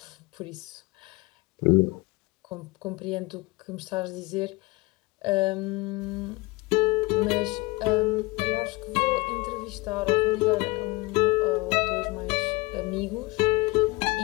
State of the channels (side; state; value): right; quieter; 23.3 dB